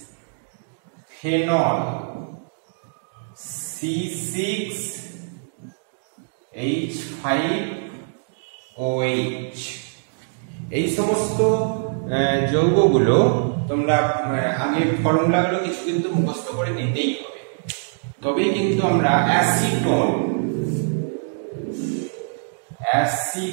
phenol C6H5OH। এই সমস্ত যৌগগুলো তোমরা আগে ফর্মুলাগুলো কিছু কিন্তু মুখস্থ করে নিতেই হবে, তবেই কিন্তু আমরা অ্যাসিটোন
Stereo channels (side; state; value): left; silent; digital silence